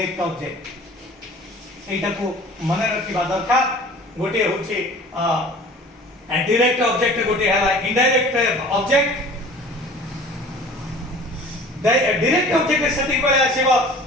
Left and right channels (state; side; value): normal; both; correlation 0.45